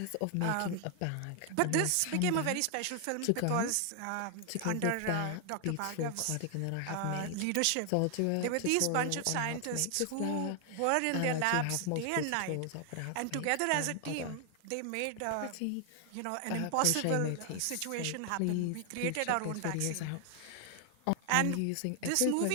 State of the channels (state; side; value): different; both; correlation 0.00